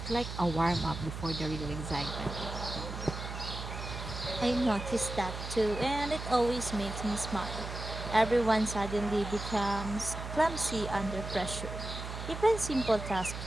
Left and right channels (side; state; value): right; noise; hum, 7 dB below the sound